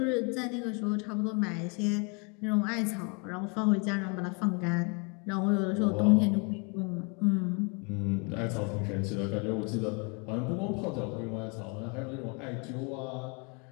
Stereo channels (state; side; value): quieter; right; 33.3 dB